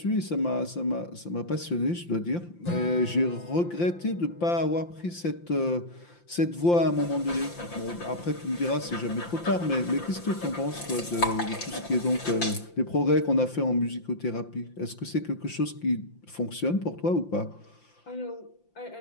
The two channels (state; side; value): late; right; 5.8 ms